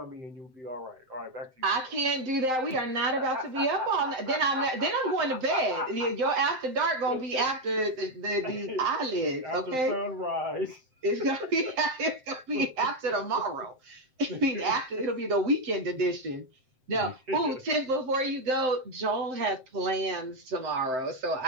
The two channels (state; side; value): late; left; 7.7 ms